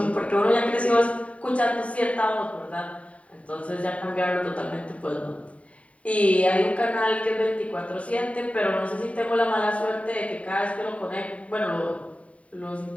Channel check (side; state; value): right; late; 0.066 ms